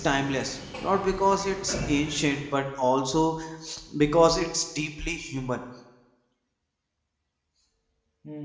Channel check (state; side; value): identical; both; correlation 1.00